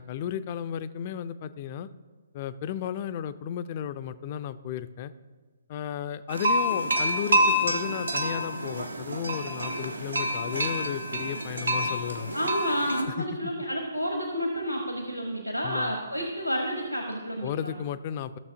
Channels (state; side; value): inverted; both; correlation -0.62